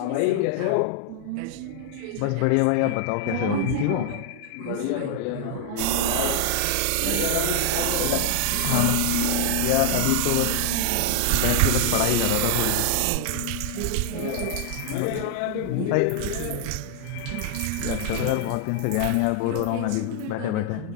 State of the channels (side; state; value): both; different; correlation 0.00